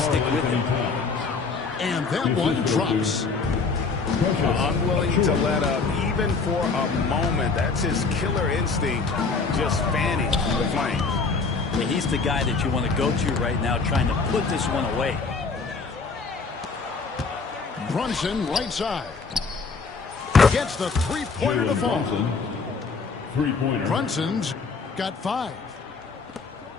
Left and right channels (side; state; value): right; quieter; 4.5 dB